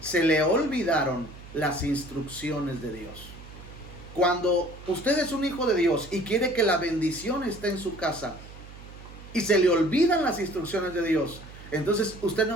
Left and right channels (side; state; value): right; noise; hum, 17 dB below the sound